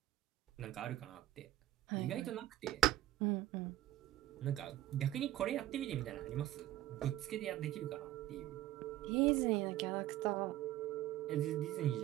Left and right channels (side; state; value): left; quieter; 14.1 dB